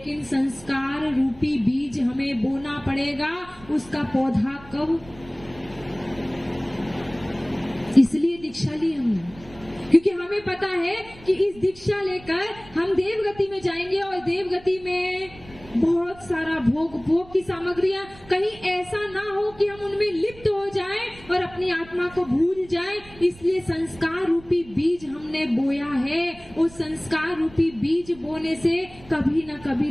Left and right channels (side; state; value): right; noise; rumble, 21 dB below the sound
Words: संस्कार रूपी बीज हमें बोना पड़ेगा। उसका पौधा कब? इसलिए दीक्षा ली हमने, क्योंकि हमें पता है कि इस दीक्षा लेकर हम देवगति में जाएंगे। और देवगति में बहुत सारा भोग की सामग्रियां, कहीं ऐसा ना हो कि हम उनमें लिप्त हो जाएं और अपनी आत्मा को भूल जाएं। इसलिए संस्कार रूपी बीज हमने बोया है। उस संस्कार रूपी बीज बोने से कभी ना